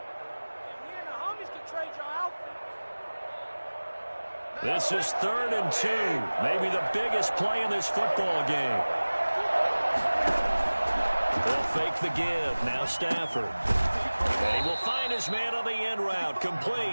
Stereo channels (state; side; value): inverted; both; correlation -1.00